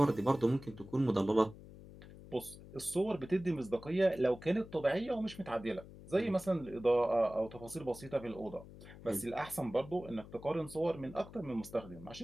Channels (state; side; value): noise; left; hum, 17 dB below the sound